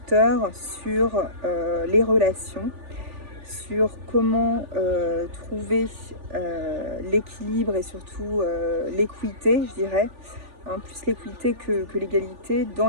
sur les relations, sur comment trouver l'équilibre et surtout l'équité, je dirais, hein, plus l'équité que l'égalité dans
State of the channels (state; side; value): late; left; 3.4 ms